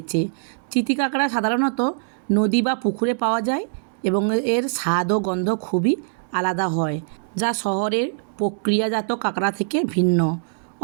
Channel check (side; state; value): left; silent; digital silence